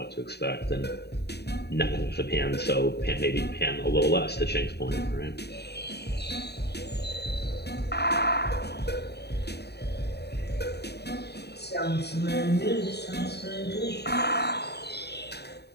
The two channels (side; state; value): right; late; 0.48 ms